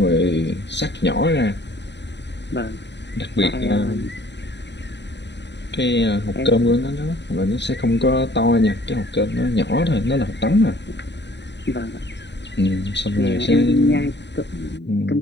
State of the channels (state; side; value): late; right; 0.51 ms